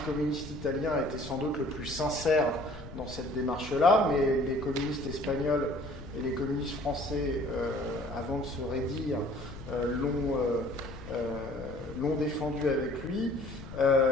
communiste italien, était sans doute le plus sincère dans cette démarche-là, mais les communistes espagnols et les communistes français, avant de se raidir, l'ont défendu avec lui.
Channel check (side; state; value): left; noise; rumble, 14 dB below the sound